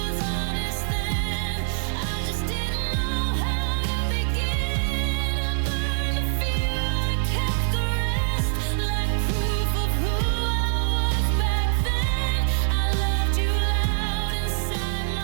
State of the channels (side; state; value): left; silent; 62 dB below the other